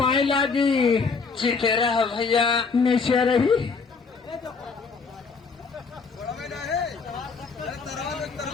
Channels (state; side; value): quieter; right; 4.9 dB